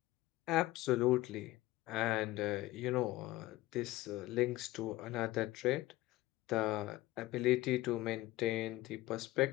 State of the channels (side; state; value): right; quieter; 17.2 dB